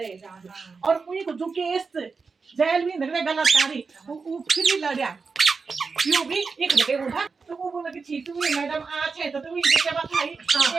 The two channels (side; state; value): left; quieter; 4.8 dB